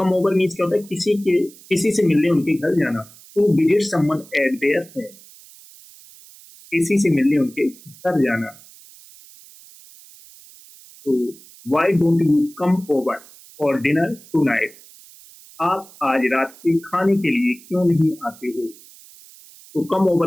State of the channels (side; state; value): right; noise; hiss, 22 dB below the sound